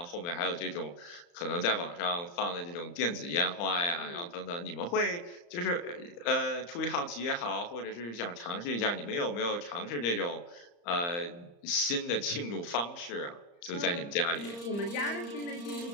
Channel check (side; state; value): right; late; 34 ms